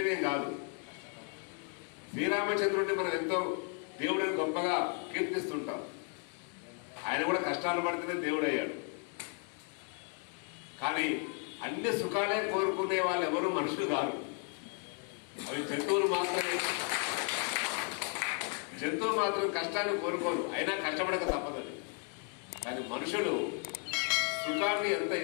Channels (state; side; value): quieter; right; 36.8 dB